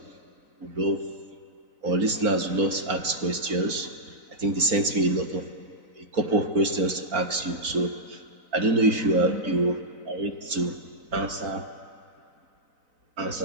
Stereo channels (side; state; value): left; late; 4.0 ms